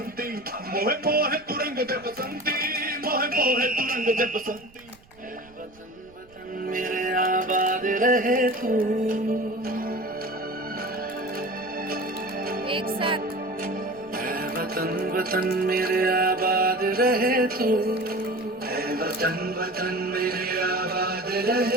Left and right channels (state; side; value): noise; right; rumble, 27 dB below the sound